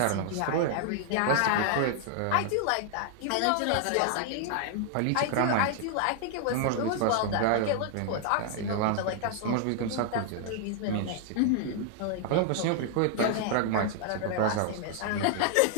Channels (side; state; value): both; different; correlation 0.00